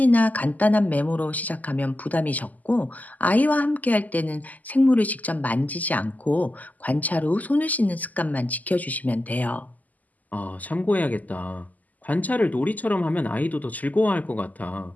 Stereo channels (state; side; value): late; right; 0.079 ms